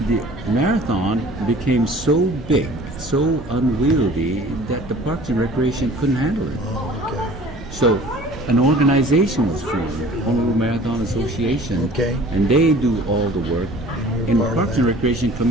The marathon became so big, so unwieldy that the Parks and Recreation couldn't handle it. Oh, okay. So an organization was formed, Honolulu Marathon Association, Okay. and they do all the work. you're And part of Parks that. and Recreation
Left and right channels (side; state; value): both; normal; correlation 0.47